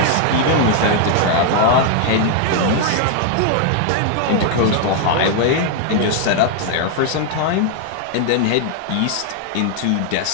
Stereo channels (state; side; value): different; both; correlation 0.00